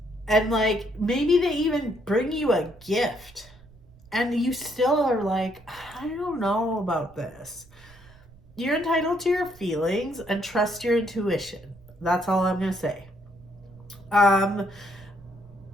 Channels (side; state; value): right; noise; rumble, 24 dB below the sound